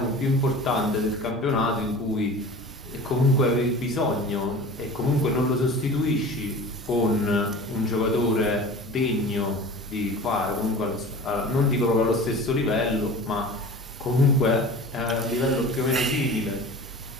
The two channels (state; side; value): normal; both; correlation 0.38